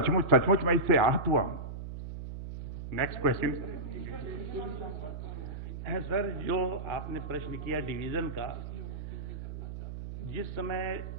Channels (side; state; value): right; noise; hum, 8 dB below the sound